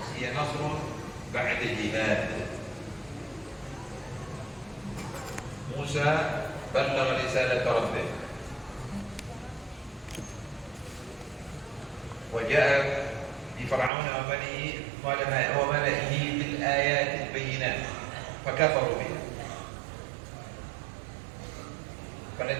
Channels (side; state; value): left; drops out; at 13.9 s